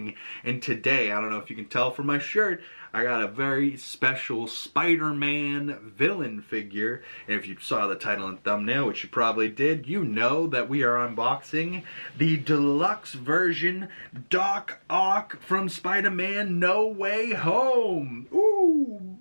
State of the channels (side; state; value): both; inverted; correlation -1.00